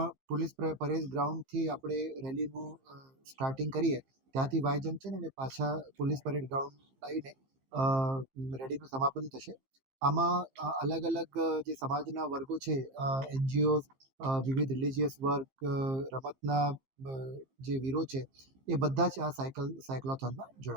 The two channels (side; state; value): left; late; 15 ms